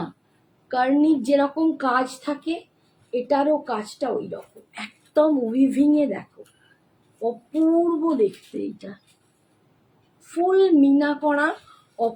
কার্নির যেরকম কাজ থাকে এটারও কাজটা ওই রকম একদম উইভিংয়ে দেখো, অপূর্ব দেখতে। এটা ফুল মিনা করা,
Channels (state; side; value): identical; both; correlation 1.00